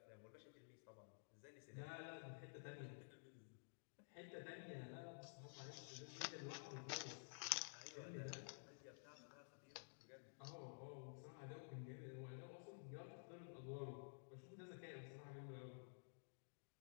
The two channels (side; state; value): right; silent; digital silence